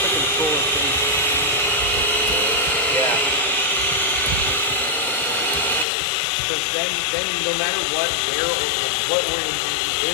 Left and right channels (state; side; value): drops out; right; at 5.9 s